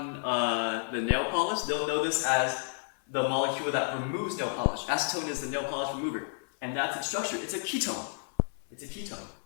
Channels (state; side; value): silent; right; 57 dB below the other